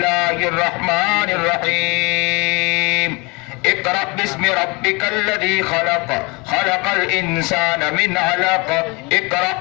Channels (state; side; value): quieter; right; 27.7 dB